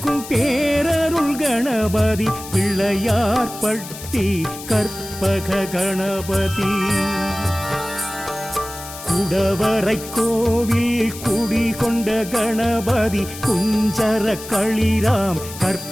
பேரருள் கணபதி பிள்ளையார் பட்டி கற்பக கணபதி குடவரை கோவில் குடிகொண்ட கணபதி குஞ்சர களிராம்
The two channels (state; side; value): noise; left; hiss, 13 dB below the sound